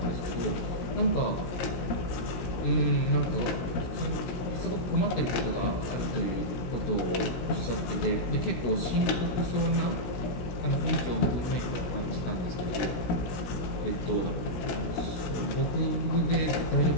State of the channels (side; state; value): right; late; 16 ms